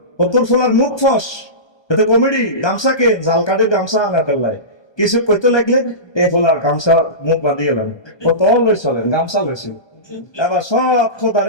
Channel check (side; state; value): right; late; 1.2 ms